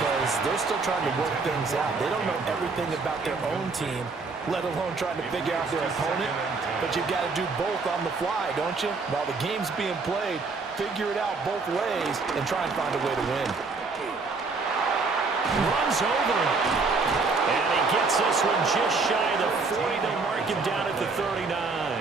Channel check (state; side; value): quieter; left; 4.2 dB